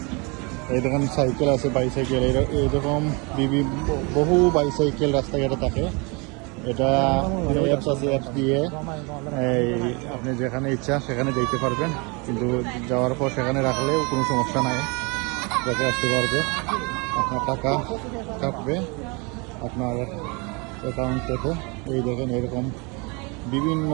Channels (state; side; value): quieter; left; 29.8 dB